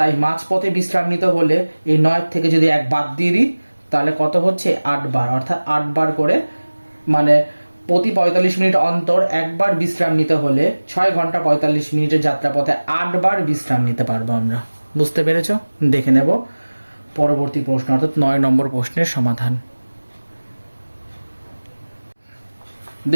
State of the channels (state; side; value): inverted; both; correlation -1.00